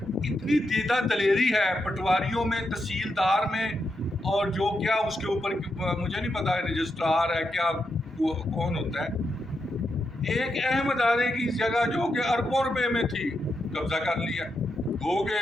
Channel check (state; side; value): normal; both; correlation 0.84